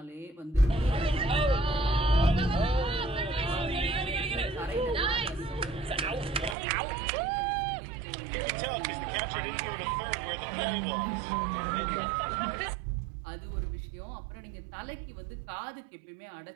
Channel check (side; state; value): left; drops out; at 6.6 s